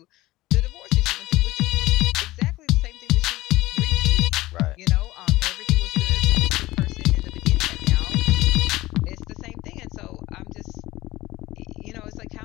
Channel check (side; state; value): right; quieter; 18.1 dB